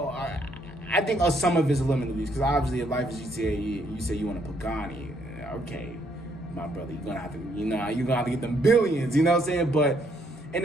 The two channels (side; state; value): both; normal; correlation 0.70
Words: think some of it's limiting beliefs, because obviously if life is GTA, you say you want a Pagani, okay, my brother, you're gonna have to get them billions, you know what I'm saying? But in